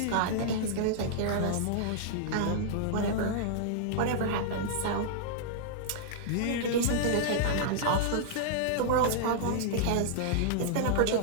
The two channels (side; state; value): both; different; correlation -0.01